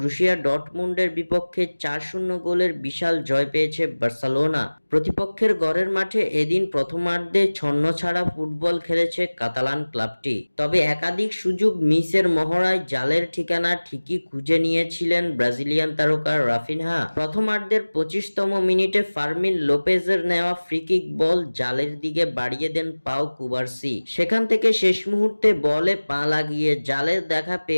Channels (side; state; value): both; inverted; correlation -1.00